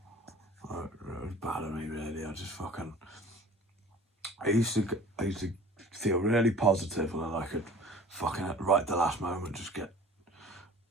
It was bad of me, really. I just fucking. I used to feel really positive, and then I could fucking right at the last moment just get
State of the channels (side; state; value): both; normal; correlation 0.45